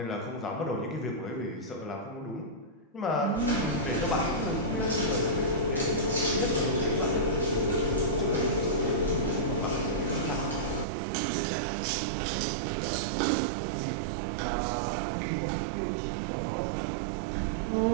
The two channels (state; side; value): drops out; left; at 10.9 s